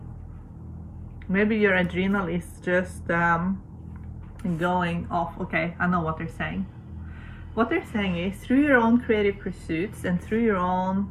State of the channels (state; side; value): identical; both; correlation 1.00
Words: Maybe your adrenal is just going off. Okay, I know what they're saying. What they're saying is, through your own creative pursuits and through your own